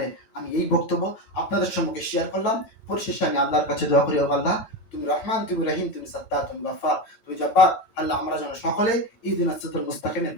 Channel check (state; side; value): late; right; 9.0 ms